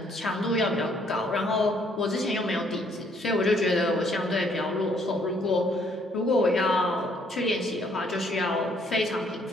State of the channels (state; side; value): normal; both; correlation 0.66